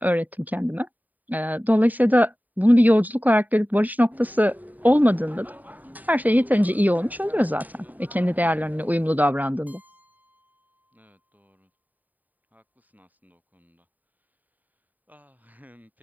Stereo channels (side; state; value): left; late; 0.082 ms